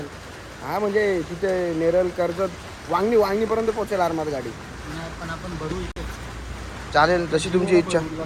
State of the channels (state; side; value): identical; both; correlation 1.00